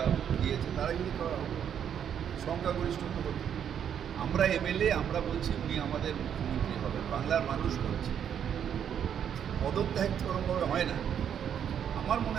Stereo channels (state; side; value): quieter; left; 8.7 dB